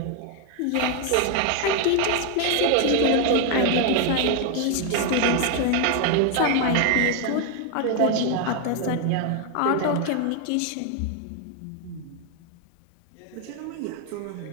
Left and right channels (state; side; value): different; both; correlation 0.01